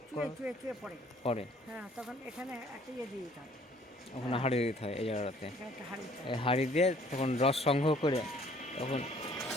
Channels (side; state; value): both; normal; correlation 0.58